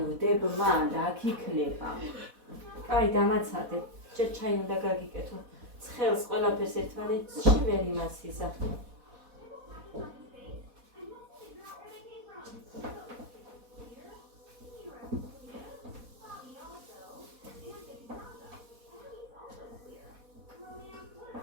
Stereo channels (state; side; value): late; left; 4.1 ms